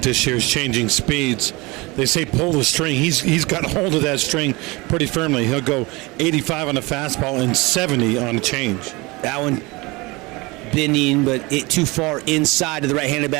this year is changing speeds. They say pull the string. He's got hold of that string pretty firmly. He'll go 85 on a fastball and 70 on a change. That one bending, but it too far inside to the right-handed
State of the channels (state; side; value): quieter; left; 24.3 dB